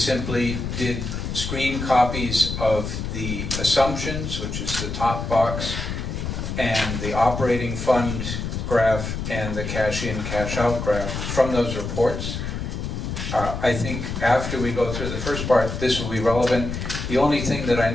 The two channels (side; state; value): left; noise; rumble, 5 dB below the sound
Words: did screen copies of the assumptions, which is the top box, and the operating fund graph and the cash in, cash out graph from those reports. I think after we go through the first part, this will be relevant. The only thing that I